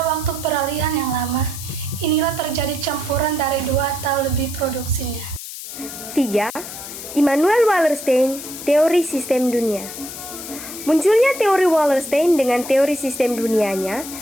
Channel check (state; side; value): noise; left; hiss, 10 dB below the sound